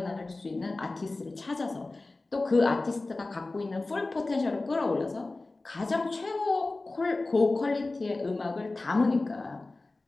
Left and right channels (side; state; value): right; quieter; 3.2 dB